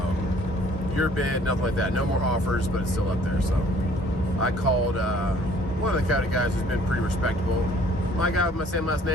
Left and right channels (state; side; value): normal; both; correlation 0.57